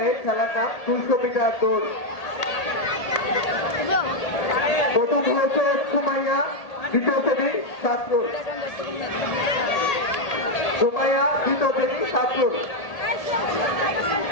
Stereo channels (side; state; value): right; late; 1.8 ms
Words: এ খেলার নাম 200 মিটার দৌড়। প্রথম হয়েছে সুমাইয়া, দ্বিতীয় শ্রেণী ছাত্র সুমাইয়া, দ্বিতীয় শ্রেণী ছাত্র।